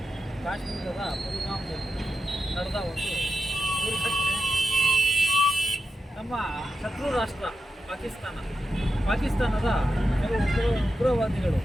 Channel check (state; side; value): normal; both; correlation 0.89